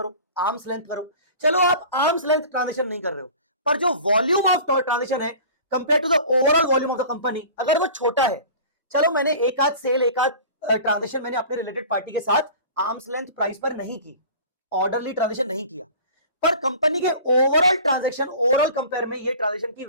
आर्म्स लेंथ करो। चलो आप आर्म्स लेंथ ट्रांजेक्शन नहीं कर रहे हो, पर जो वॉल्यूम ऑफ ट्रांजेक्शन है compare to the overall volume of the company, अगर वो छोटा है, चलो मैंने एक आध सेल, एक आध ट्रांजेक्शन मैंने अपने रिलेटेड पार्टी के साथ आर्म्स लेंथ प्राइस पर नहीं की, ऑर्डरली ट्रांजेक्शन नहीं किया, पर कंपनी के ओवरऑल ट्रांजेक्शन, ओवरऑल कंपेयर में ये ट्रांजेक्शन की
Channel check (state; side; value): inverted; both; correlation -0.41